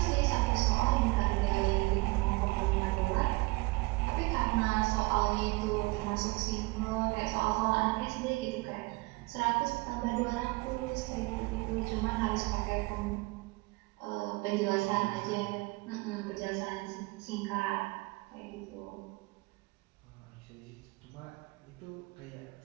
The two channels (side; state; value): left; quieter; 24.5 dB